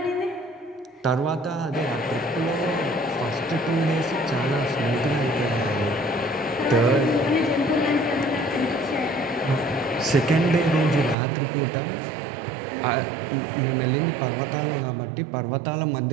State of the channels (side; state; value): left; drops out; at 11.2 s